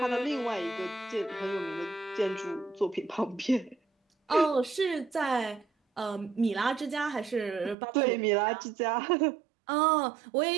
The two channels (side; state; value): left; drops out; at 7.8 s